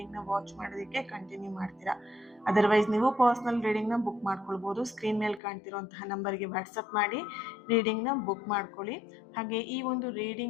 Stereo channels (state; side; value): drops out; right; at 5.4 s